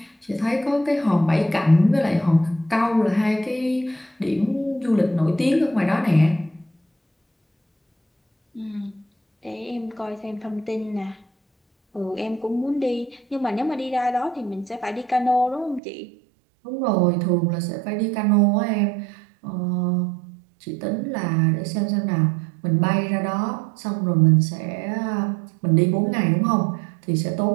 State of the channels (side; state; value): left; drops out; at 15.8 s